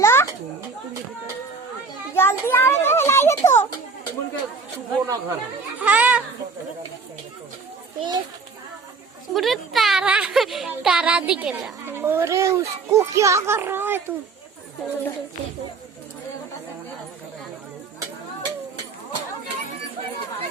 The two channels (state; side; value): quieter; left; 4.5 dB